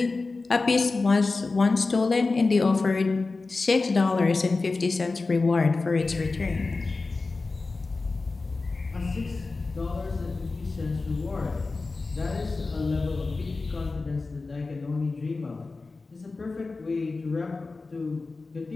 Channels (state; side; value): quieter; right; 3.7 dB